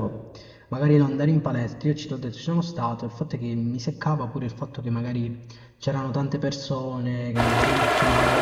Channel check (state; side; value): identical; both; correlation 1.00